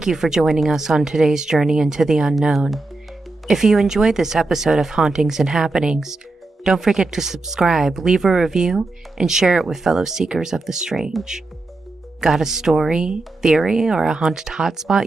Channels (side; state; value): left; quieter; 3.2 dB